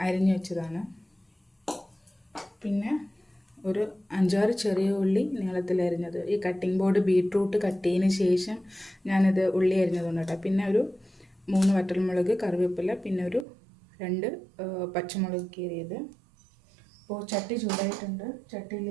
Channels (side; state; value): left; drops out; at 13.5 s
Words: അരിഞ്ഞു വെച്ചതാണ്. പിന്നെ ഒരു 5-6 ചെറിയ ഉള്ളി നീളത്തിൽ അരിഞ്ഞത്. ഈ കട്ടിംഗ് ബോർഡ് ബീറ്റ്റൂട്ട് കട്ട് ചെയ്തതിന് ശേഷം ഞാനിത് ഉള്ളി അരിഞ്ഞതുകൊണ്ട് കേട്ടോ. പിന്നെ ഒരു 3 വറ്റൽമുളക്, കറിവേപ്പില, പിന്നെ ഒരു 2 പച്ചമുളക് കീറിയത്. അപ്പോൾ ചട്ടി ചൂടായിട്ടുണ്ട്.